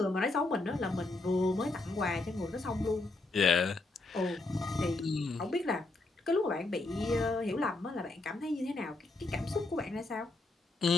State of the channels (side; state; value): right; quieter; 3.1 dB